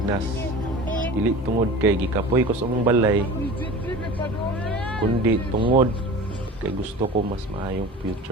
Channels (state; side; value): normal; both; correlation 0.37